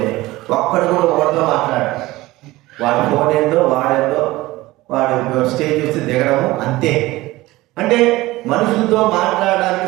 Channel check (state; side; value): quieter; left; 18.8 dB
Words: ఒక్కడు కూడా ఒకరితో మాట్లాడు. వాడి ఫోన్ ఏందో, వాడేందో, వాడు స్టేజ్ చూస్తే దిగడము అంతే. అంటే మనుషులతో మాట్లాడడానికి,